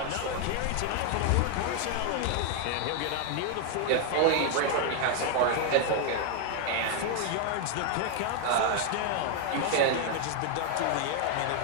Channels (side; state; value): both; different; correlation 0.00